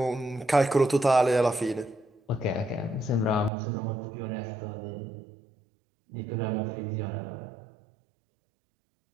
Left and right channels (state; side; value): drops out; left; at 3.5 s